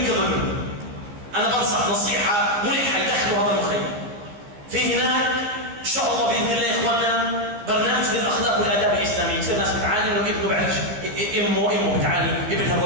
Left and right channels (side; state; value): left; late; 14 ms